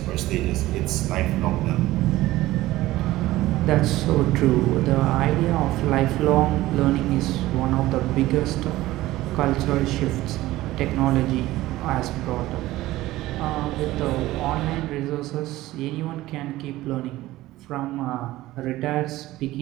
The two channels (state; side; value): quieter; left; 16.8 dB